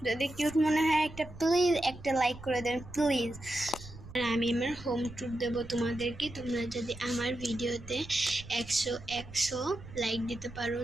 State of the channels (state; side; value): noise; right; rumble, 16 dB below the sound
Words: যদি কিউট মনে হয় প্লিজ একটা লাইক করে দেন প্লিজ। আর আমি আমার হোম ট্যুর দেবো তোমাদেরকে। তোমরা যদি আমার ভিডিওতে 100 লাইক দিতে পারো,